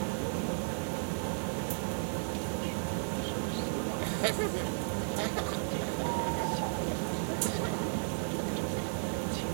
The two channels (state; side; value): silent; left; digital silence